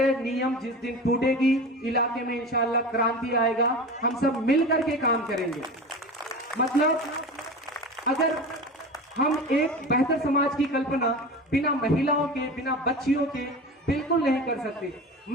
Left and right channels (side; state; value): both; normal; correlation 0.31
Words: नियम जिस दिन टूटेगी, इलाके में इंशाअल्लाह क्रांति आएगा। हम सब मिलकर के काम करेंगे। मतलब अगर हम एक बेहतर समाज की कल्पना बिना महिलाओं के, बिना बच्चियों के बिल्कुल नहीं कर सकते।